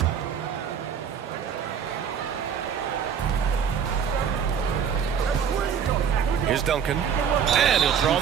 Here's Duncan. And he'll draw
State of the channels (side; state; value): left; quieter; 7.5 dB